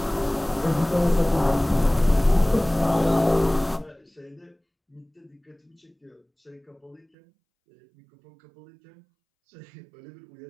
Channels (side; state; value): left; drops out; at 7.1 s